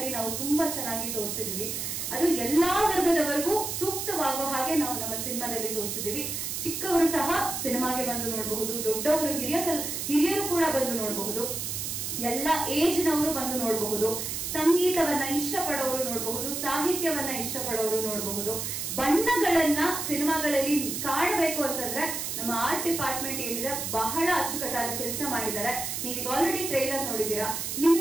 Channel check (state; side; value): noise; right; hiss, 3 dB below the sound